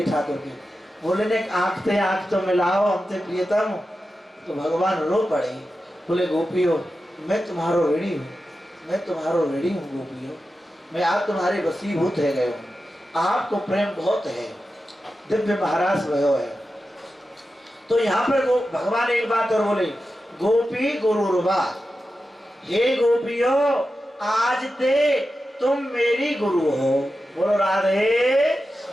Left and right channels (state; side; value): normal; both; correlation 0.91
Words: ठाकुर के, बोले ने आंख तो मिलाओ हमसे प्रियतम। तो भगवान रो पड़े, बोले गोपियों मैं तुम्हारो ऋणी हूँ, मैं तुम्हारो ऋणी हूँ गोपियों, मैं आज तुम्हारे वसीभूत है गए हूँ, आपको प्रेम बहुत है, दिव्य महाराज भयो है। तो यहाँ पर भगवान एक बात और बोले, गोपी गुरुर्वा, हे गोपियों आज ते तुम मेरी गुरु हो। बोलो राधे।